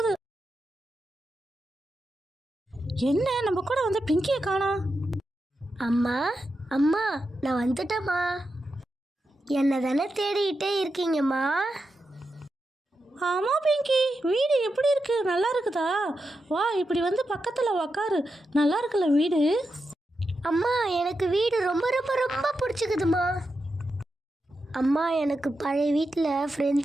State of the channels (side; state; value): both; normal; correlation 0.88